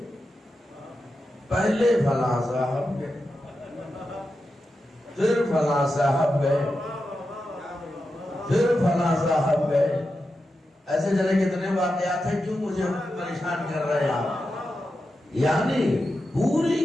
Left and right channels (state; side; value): normal; both; correlation 0.89